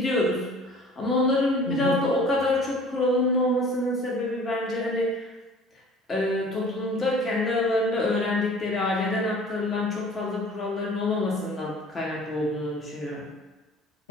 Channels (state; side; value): normal; both; correlation 0.48